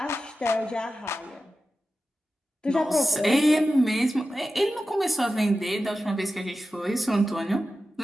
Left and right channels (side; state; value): both; normal; correlation 0.93